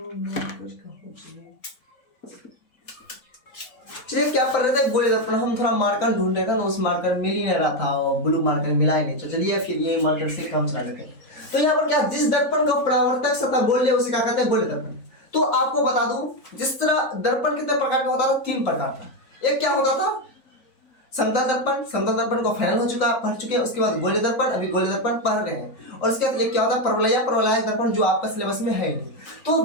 चलिए क्या पढ़ रहे थे? गोलीय दर्पण। हम थोड़ा मार्कर ढूंढ रहे थे ना, उस मार्कर मिल ही नहीं रहा था, ब्लू मार्कर मिला ही नहीं। तो चलिए फिर ये मार्कर से काम चला लेते हैं। तो यहाँ पर क्या, जिस दर्पण का परावर्तक सतह गोलीय उसे क्या कहते हैं? गोलीय दर्पण। तो आपको बता दूं, जिस तरह दर्पण कितने प्रकार का होता था? 3 प्रकार का। एक क्या होता था? समतल दर्पण। समतल दर्पण को फाइनल पढ़ चुके हैं। उसके बाद गोलीय दर्पण, अभी गोलीय दर्पण पढ़ रहे हैं। और उसके बाद एक क्या होता है? परवलयिक दर्पण, जो आपका सिलेबस में है ही नहीं। तो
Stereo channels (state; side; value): late; right; 3.9 ms